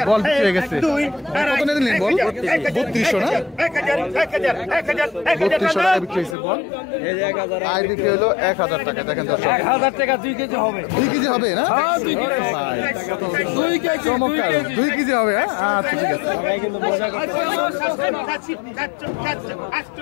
বল বিক্রি হয়ে গেছে কত নিলেন বল? 3200 না 3200 টাকা বিক্রি হয়েছে বল। আইড বিক্রি হলো 1000 টাকা। দেখেন দর্শক 1000 টাকা 2 কেজি হবে 2 কেজি হবে না? হ্যাঁ 2 কেজি ভাই, 2 কেজি চমৎকার 2 কেজি হবে। আচ্ছা ঠিক আছে কিন্তু মজা করতে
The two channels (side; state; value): right; drops out; at 6.4 s